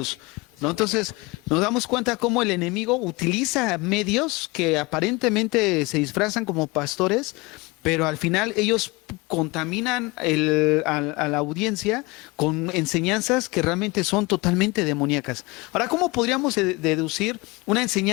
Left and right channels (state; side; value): quieter; right; 24.6 dB